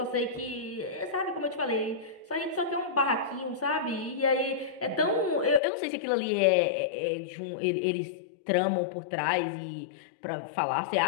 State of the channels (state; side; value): drops out; right; at 5.6 s